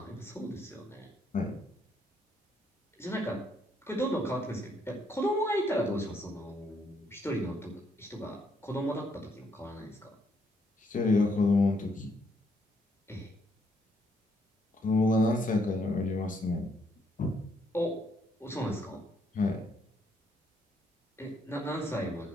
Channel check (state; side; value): normal; both; correlation 0.73